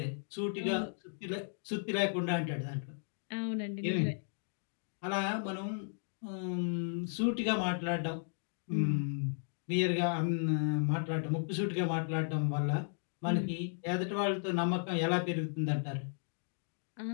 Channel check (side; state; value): right; silent; digital silence